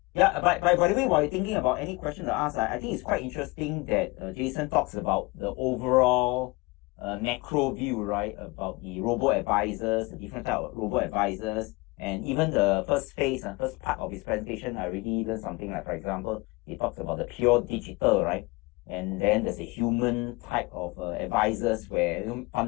Yeah, by the way, while you're thinking about any question to ask, I think it's quite interesting that Jason talks about the overall a macro view, right, about the robo-advisors, the different type of robo-advisors, and even the first phase, first part of his presentation, I really learned something. Like, for example, he talks about the pure digital, right, and then there's a human type of advisors where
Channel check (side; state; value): right; quieter; 24.8 dB